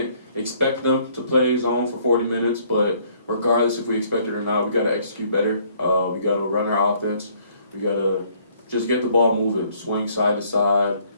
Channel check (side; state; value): both; inverted; correlation -0.63